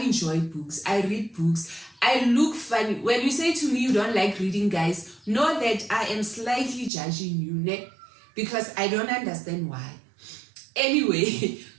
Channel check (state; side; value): drops out; left; at 6.9 s